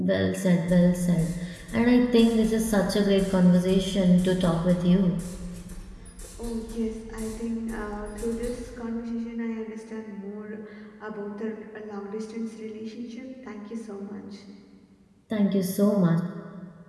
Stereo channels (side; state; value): both; identical; correlation 1.00